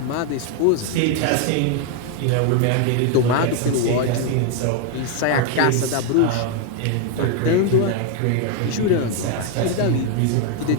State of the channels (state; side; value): different; both; correlation 0.01